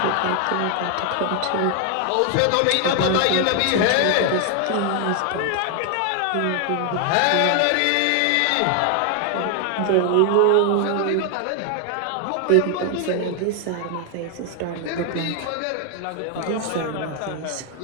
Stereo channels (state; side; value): different; both; correlation 0.00